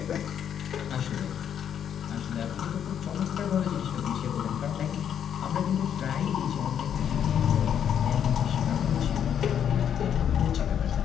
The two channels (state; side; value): quieter; right; 8.9 dB